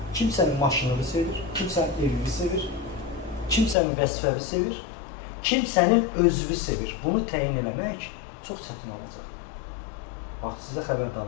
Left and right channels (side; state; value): right; drops out; at 3.8 s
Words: Kim sənin maşınını sevir, kim sənin evini sevir, kim sənin vəzifəvi sevir, kim sənin özünü sevir. Bunu təyin eləmək çox çətin olacaq. Bax, sizə